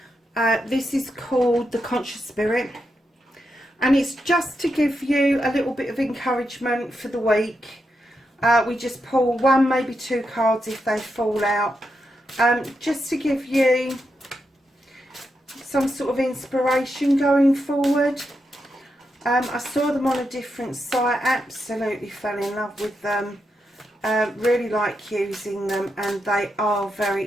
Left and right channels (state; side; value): normal; both; correlation 0.85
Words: This is called the Conscious Spirit. And it's just to give you a little bit of encouragement for the week. We just pull one, maybe two cards if they fall out. Just to give you some sort of inspiration going forward. I saw them on a different site, absolutely fell in love with them. Really like using them, and they are very